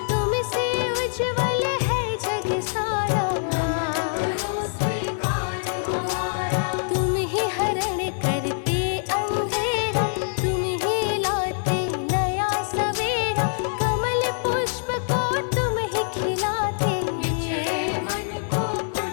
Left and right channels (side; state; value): right; silent; 62 dB below the other